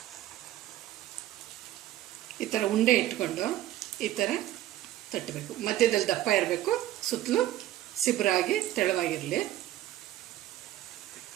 ಈ ಥರ ಉಂಡೆ ಇಟ್ಕೊಂಡು ಈ ಥರ ತಟ್ಟಬೇಕು. ಮಧ್ಯದಲ್ಲಿ ದಪ್ಪ ಇರಬೇಕು, ಸುತ್ತಲೂ ಸಿಬ್ರಾಗಿ ತೆಳುವಾಗಿರಲಿ.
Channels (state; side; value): quieter; left; 14.0 dB